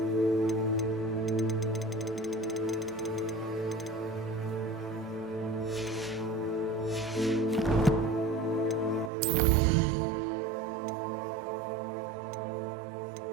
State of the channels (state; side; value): drops out; left; at 9.1 s